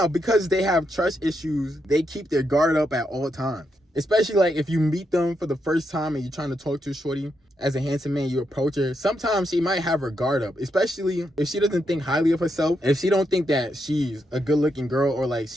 because they have trust issues, they keep their guard up at all times. Especially like if you meet them for the first time and you're trying to talk to a shorty, as a handsome man, you approach her, sometimes she might have her guard up, especially if she doesn't think highly of herself. If she don't think that she's a good looking girl, or like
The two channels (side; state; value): both; normal; correlation 0.81